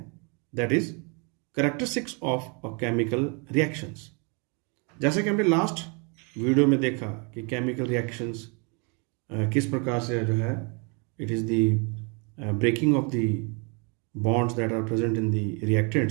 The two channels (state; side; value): quieter; left; 33.8 dB